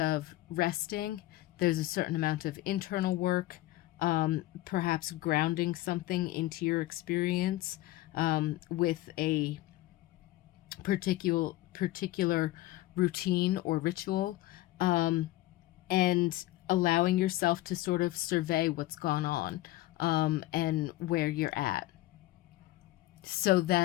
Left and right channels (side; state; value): right; quieter; 16.9 dB